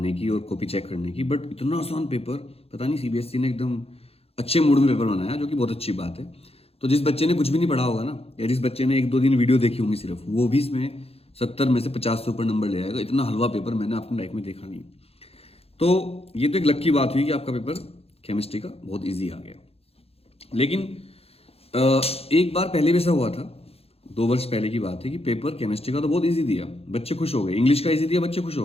की और कॉपी चेक करने की, बट इतना आसान पेपर पता नहीं सीबीएसई ने एकदम अच्छे मूड में पेपर बनाया, जो कि बहुत अच्छी बात है। तो जिस बच्चे ने कुछ भी नहीं पढ़ा होगा ना, या जिस बच्चे ने 1-2 दिन वीडियो देखी होंगी सिर्फ, वो भी इसमें 70 में से 50 से ऊपर नंबर ले आएगा। इतना हलवा पेपर मैंने अपनी लाइफ में देखा नहीं। तो ये तो एक लकी बात हुई कि आपका पेपर केमिस्ट्री का बहुत ईजी आ गया। लेकिन एक बार पहले भी ऐसा हुआ था, 2 वर्ष पहले की बात है, कि पेपर केमिस्ट्री का तो बहुत इजी दिया, बच्चे खुश हो गए। इंग्लिश का इजी दिया, बच्चे खुश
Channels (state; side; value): late; right; 0.29 ms